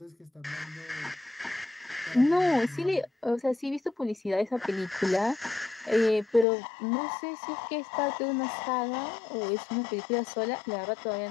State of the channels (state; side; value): drops out; right; at 6.5 s